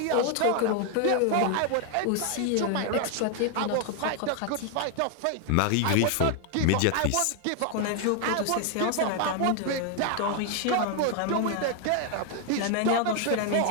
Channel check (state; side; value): different; both; correlation 0.00